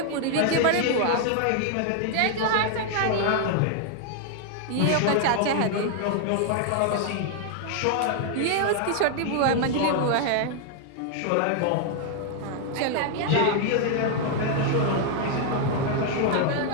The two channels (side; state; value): both; different; correlation 0.00